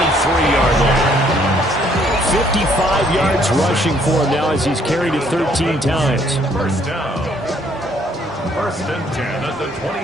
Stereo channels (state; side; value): normal; both; correlation 0.65